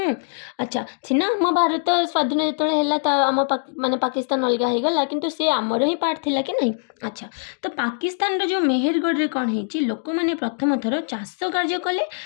अच्छा सीना आम भारत स्वाधीन जो आम माने पाकिस्तान अलग हो गला किंतु से आमर ही पार्ट थिला कि नहीं। अच्छा तो पाकिस्तान जो मेहरगढ़ रे कौन है लोक मैंने प्रथम थर चाष कार्य कले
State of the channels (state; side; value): silent; right; digital silence